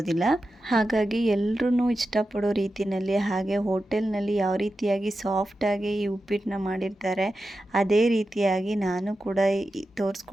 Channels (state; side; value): normal; both; correlation 0.91